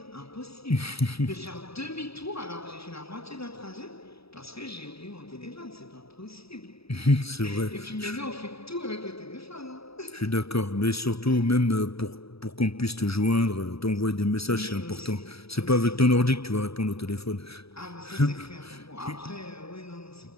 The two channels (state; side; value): late; right; 0.77 ms